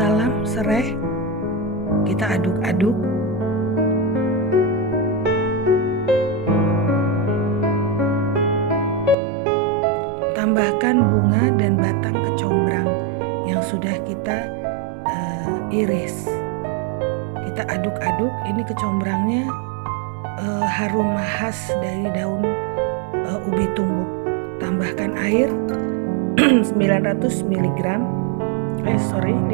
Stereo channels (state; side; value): drops out; left; at 9.2 s